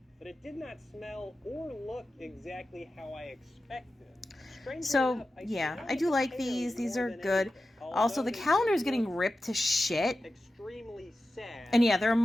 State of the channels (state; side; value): normal; both; correlation 0.93